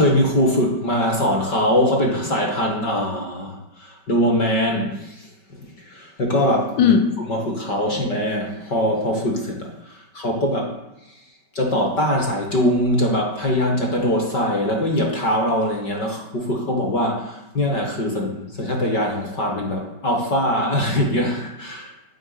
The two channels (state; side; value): late; right; 5.2 ms